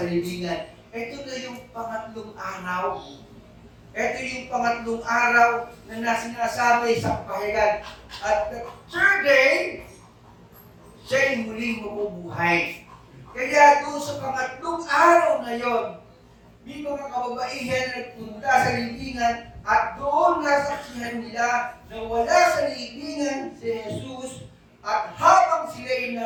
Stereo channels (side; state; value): both; identical; correlation 1.00